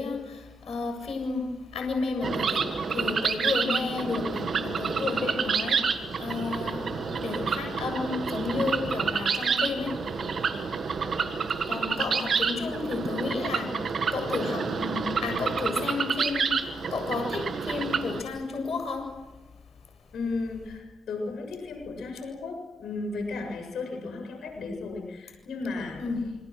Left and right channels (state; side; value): normal; both; correlation 0.79